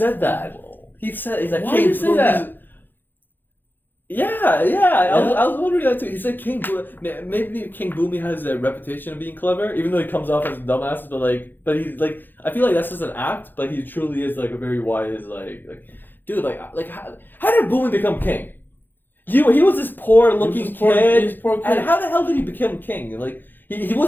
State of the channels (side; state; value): right; late; 0.091 ms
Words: that. He's like, why did you say that? Yeah. I was wondering that too. He said maybe King Boomei has a reputation of being clever, even though he comes off as a dumbass. But he's like, I feel like that's just an act. But he truly is like a very wise, like dude. Like how did Boomei become king? He was this poor looking kid. And how the hell did he become king? Like he